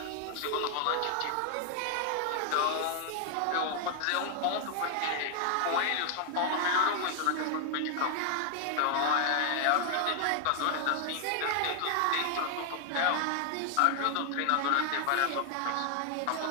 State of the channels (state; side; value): different; both; correlation 0.00